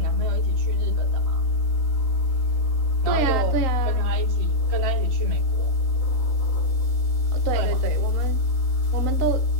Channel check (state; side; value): late; right; 3.9 ms